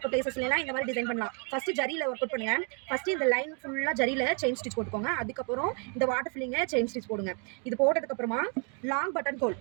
பிளேசஸ்லாம் இந்த மாதிரி டிசைன் பண்ணலாம். ஃபஸ்ட்டு ஜரியில் ஒர்க் அவுட் பண்ணுங்க. ஃபஸ்ட்டு இந்த லைன் ஃபுல்லாக ஜரியில் செயின் ஸ்டிச் போட்டுக்கோங்க. அதுக்கப்புறம் இந்த வாட்டர் ஃபில்லிங்கை செயின் ஸ்டிச் போடுங்க. இது போட்டதுக்கப்புறமா லாங் பட்டன் ஹோல்,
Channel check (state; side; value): quieter; left; 38.5 dB